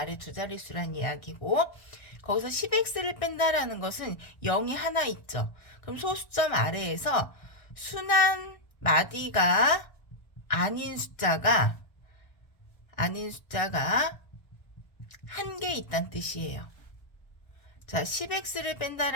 두 자릿수란 이야기고 거기서 10x를 뺀다라는 것은 0이 하나 있죠. 그럼 소수점 아래에서 순환 마디가 아닌 숫자가 한 개 있다는 뜻이에요. 자, 10x를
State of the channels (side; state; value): right; late; 1.6 ms